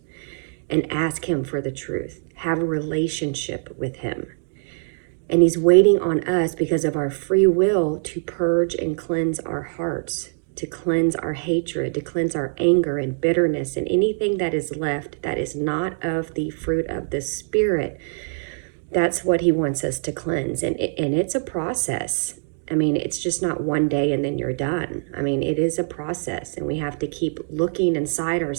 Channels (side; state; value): left; silent; digital silence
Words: and ask him for the truth, have a relationship with him. And he's waiting on us because of our free will to purge and cleanse our hearts, to cleanse our hatred, to cleanse our anger and bitterness and anything that is left that is not of the fruit of the Spirit. That's what he wants us to cleanse. And it's a process. I mean, it's just not one day and then you're done. I mean, it is a process, and we have to keep looking inside